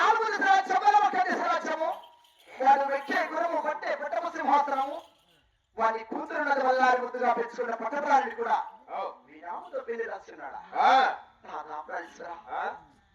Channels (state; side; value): identical; both; correlation 1.00